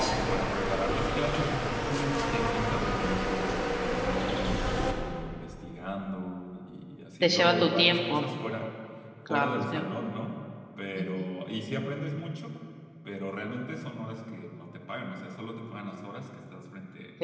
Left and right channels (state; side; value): identical; both; correlation 1.00